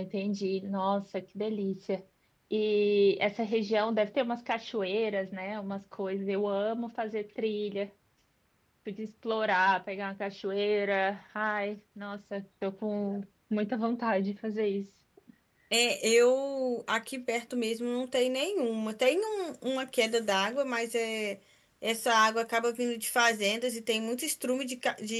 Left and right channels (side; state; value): both; identical; correlation 1.00